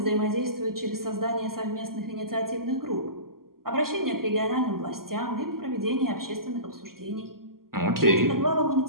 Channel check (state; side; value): late; left; 0.92 ms